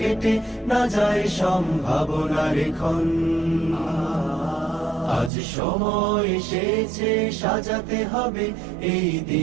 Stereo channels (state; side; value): drops out; left; at 5.3 s